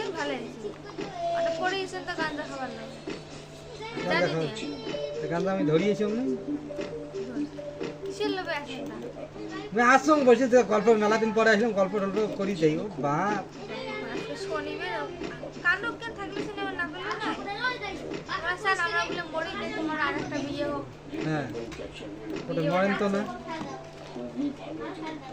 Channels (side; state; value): both; identical; correlation 1.00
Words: ভালো হয়েছে ওটা পরে এসে তো গাঁজা খাবার নাই গাঁজা খাওয়াচ্ছি গাঁজা আমি ধরিয়েছি না কিসের লোভে আসেন না আমি আসলাম বসে গল্প মেলা দিন পরে আসলাম গল্প টল্প করি যাই ও বাপ আজকে শনিবার কাণ্ডব কেন থাকলে সিনেমা না করলে না আমরা স্যার আমরা বলে মরি যে তোমার আর একটা বিয়ে হোক হ্যাঁ ওটা মরেন তো না